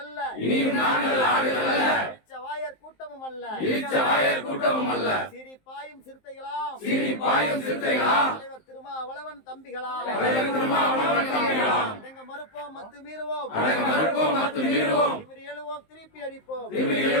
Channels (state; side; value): late; right; 19 ms